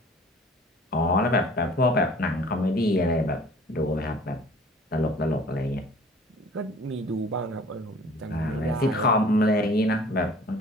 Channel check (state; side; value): normal; both; correlation 0.49